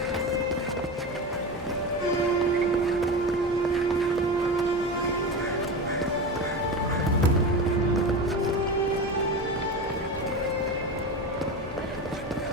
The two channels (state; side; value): normal; both; correlation 0.23